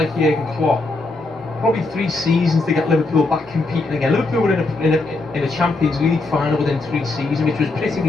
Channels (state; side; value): quieter; right; 3.2 dB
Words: Jurgen Klopp probably 3 seasons to get Liverpool back competing again. Liverpool were in a Champions League final within 3 seasons, which was pretty